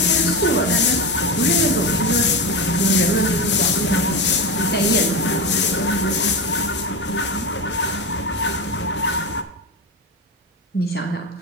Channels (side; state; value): both; normal; correlation 0.19